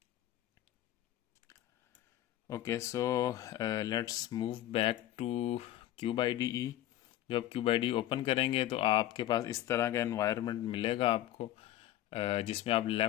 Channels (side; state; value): right; quieter; 13.5 dB